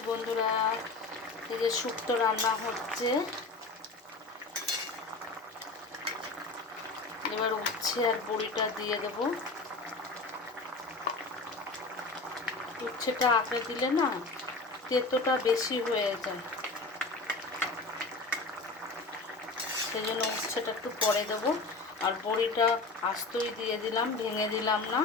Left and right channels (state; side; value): quieter; right; 3.5 dB